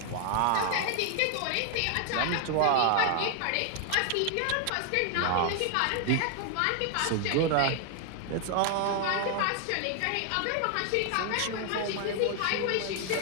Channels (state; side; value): different; both; correlation 0.00